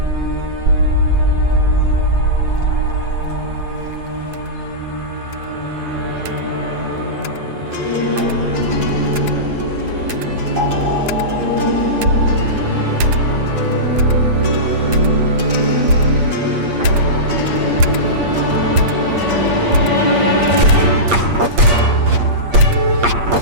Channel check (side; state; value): left; late; 8.5 ms